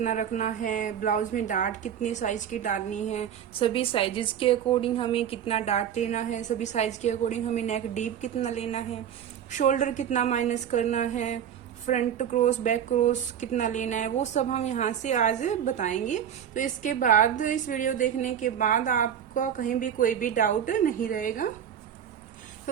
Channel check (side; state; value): left; quieter; 9.1 dB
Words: रखना है, ब्लाउज में डार्ट कितने साइज की डालनी है, सभी साइजेस के अकॉर्डिंग हमें कितना डार्ट लेना है, सभी साइज के अकॉर्डिंग हमें नेक डीप कितना लेना है, शोल्डर कितना माइनस करना है, फ्रंट क्रॉस बैक क्रॉस कितना लेना है, वो सब हम यहाँ से आज बताएंगे। तो इसके बाद इस वीडियो देखने के बाद आपका कहीं भी कोई भी डाउट नहीं रहेगा।